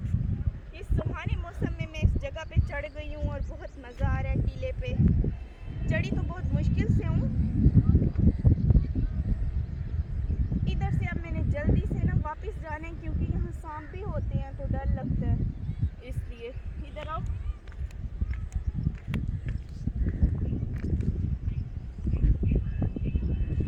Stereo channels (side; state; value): both; identical; correlation 1.00